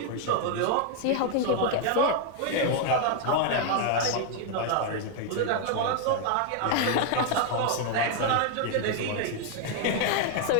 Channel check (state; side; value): different; both; correlation 0.00